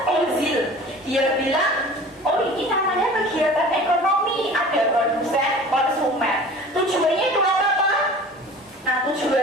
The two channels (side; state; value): both; normal; correlation 0.42